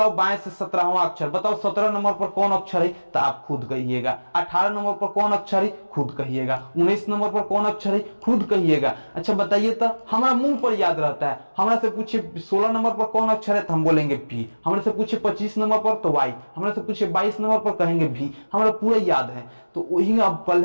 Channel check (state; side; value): inverted; both; correlation -1.00